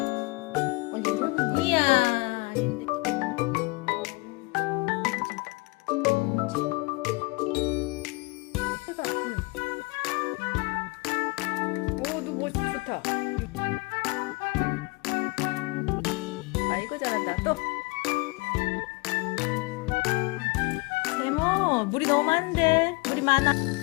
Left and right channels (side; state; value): right; quieter; 27.8 dB